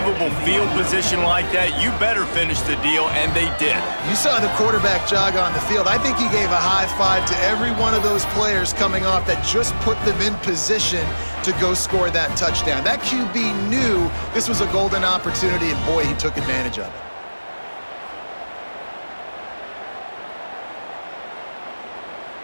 field position like that, you better finish the deal, and they did. You saw the quarterback jog on the field. I think he gave a high five to every one of those players coming off that just put them in position to go score that touchdown. That QB knew this was a golden opportunity, and boy, he took advantage of it.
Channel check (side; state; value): both; inverted; correlation -1.00